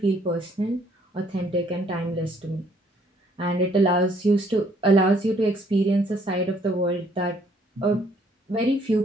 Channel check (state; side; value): normal; both; correlation 0.64